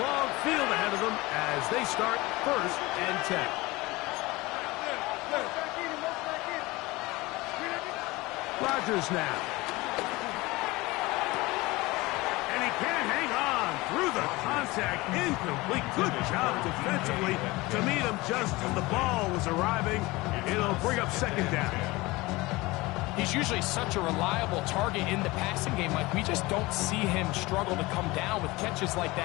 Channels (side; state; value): right; quieter; 21.6 dB